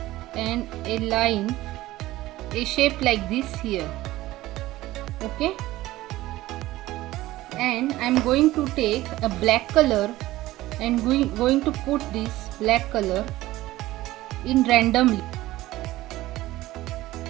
and a shape like this here. Okay, and I'm going to take a black color and going to put this black color in randomly.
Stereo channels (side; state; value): left; quieter; 16.8 dB